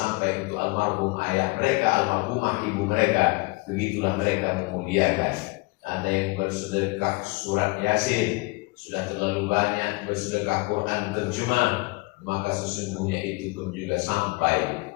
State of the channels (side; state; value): right; quieter; 26.0 dB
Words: untuk almarhum ayah mereka, almarhumah ibu mereka. Begitulah mereka memuliakan. Ada yang bersedekah surat Yasin, sudah terlalu banyak bersedekah Quran terjemah, maka sesungguhnya itu pun juga sampai.